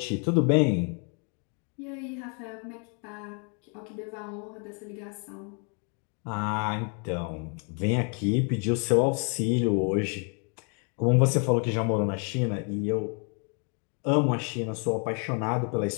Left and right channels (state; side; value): quieter; right; 39.2 dB